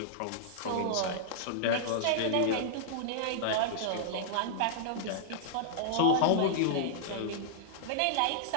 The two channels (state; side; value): different; both; correlation -0.01